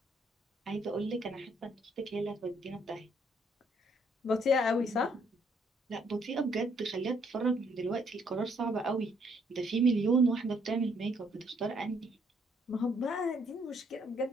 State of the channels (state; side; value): normal; both; correlation 0.68